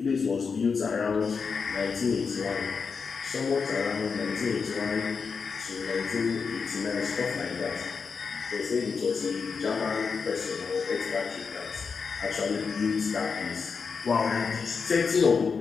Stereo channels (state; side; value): quieter; right; 5.4 dB